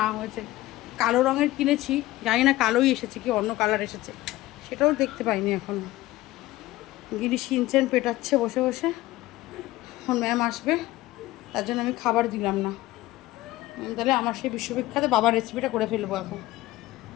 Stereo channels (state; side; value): quieter; right; 17.4 dB